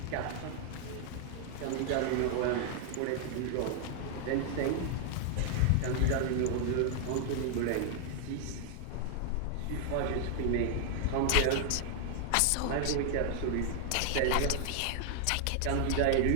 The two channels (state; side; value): different; both; correlation 0.00